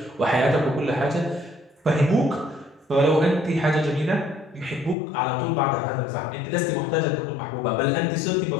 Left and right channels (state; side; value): drops out; right; at 5.0 s